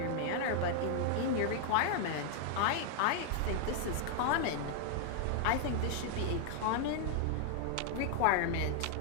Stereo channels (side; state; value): both; different; correlation 0.00